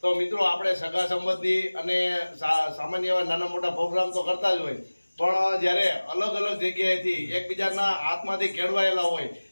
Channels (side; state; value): both; inverted; correlation -1.00